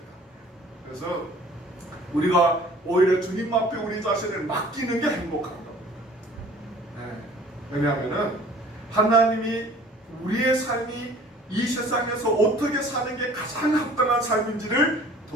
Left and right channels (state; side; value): normal; both; correlation 0.50